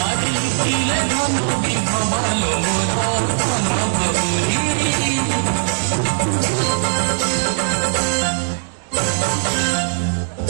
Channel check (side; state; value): left; silent; 62 dB below the other